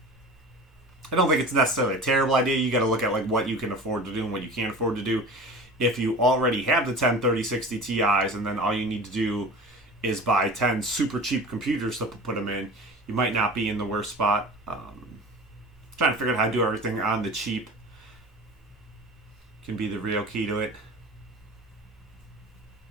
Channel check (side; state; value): both; normal; correlation 0.37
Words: don't think it's necessarily a terrible idea. You got to look at like what you can afford to do and what you can't afford to do. If you already have the 10 3060 Ti's and then all you need to do is buy 10 super cheap computers to put them in, you might not be in the worst spot. Trying to figure out how to do everything on the cheap can be the real key to it.